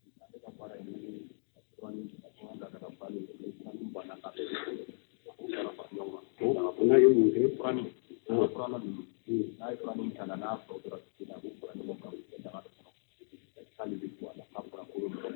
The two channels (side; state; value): right; silent; digital silence